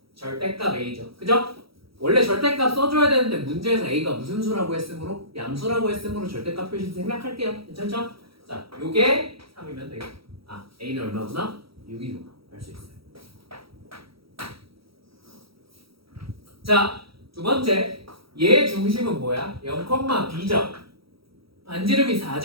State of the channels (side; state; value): left; late; 0.75 ms